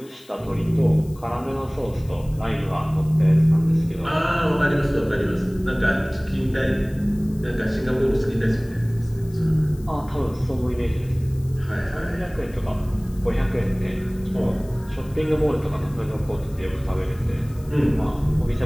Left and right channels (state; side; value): noise; left; hiss, 25 dB below the sound